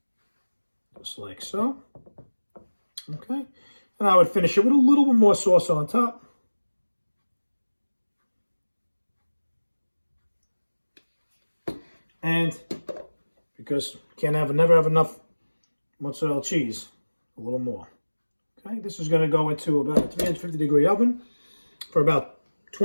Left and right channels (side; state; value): both; inverted; correlation -1.00